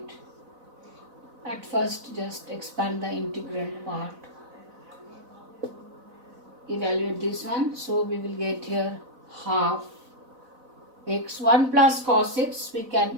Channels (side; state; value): left; late; 4.0 ms